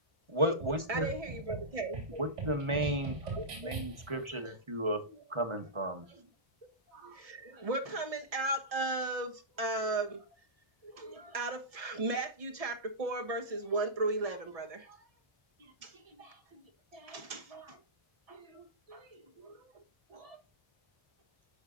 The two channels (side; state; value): left; late; 1.7 ms